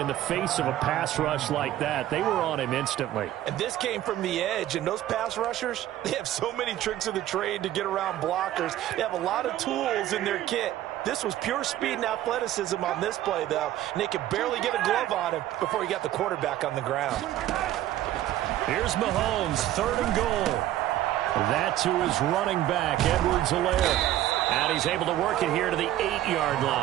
the face of a pass rush like that. They were on him instantly. And this came from the edge, and those pass rushers, they have so many tricks of the trade to get around blockers. They have a lot of tools in their kit. This was pure speed and athleticism on this play, though, and they could barely get a glove on him before he got the quarterback on the ground. Here's Mahomes, 3rd and goal. That to his running back, Edwards-Helaire. And he's able to work it here to the 8-yard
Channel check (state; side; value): quieter; left; 13.4 dB